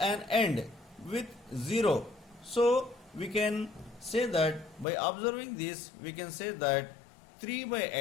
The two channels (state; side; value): drops out; right; at 4.9 s